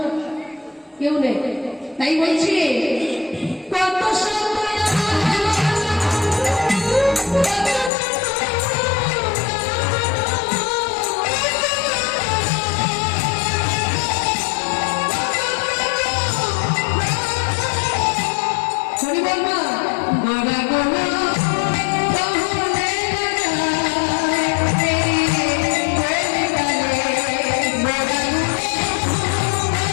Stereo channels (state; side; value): drops out; right; at 7.9 s